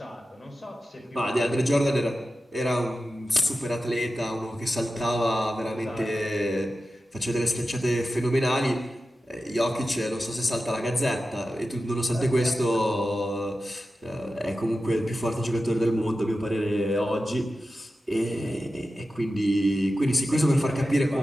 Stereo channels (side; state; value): both; normal; correlation 0.93